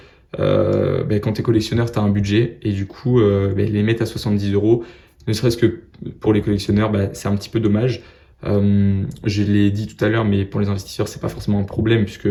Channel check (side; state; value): both; identical; correlation 1.00